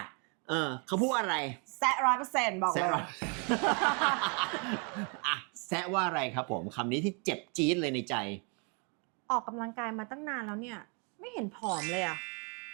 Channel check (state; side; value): quieter; left; 35.7 dB